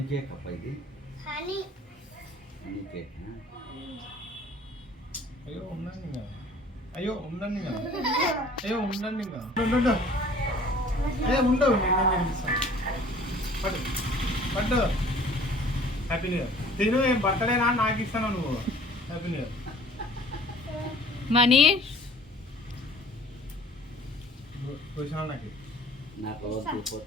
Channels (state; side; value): normal; both; correlation 0.51